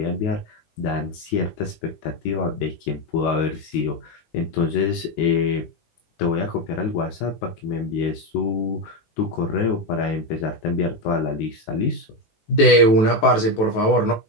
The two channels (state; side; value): late; right; 19 ms